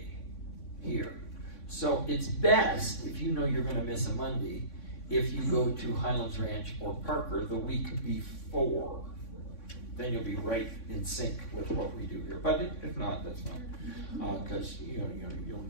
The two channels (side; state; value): right; late; 3.6 ms